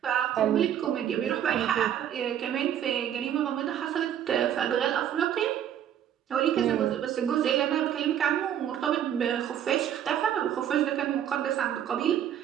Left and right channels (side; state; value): left; quieter; 10.1 dB